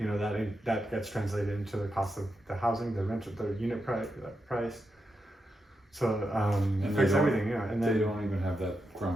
know, that gets translated into the cost of the housing, the rent, the unit price. So it affects everything, And then they don't even have that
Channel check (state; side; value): normal; both; correlation 0.86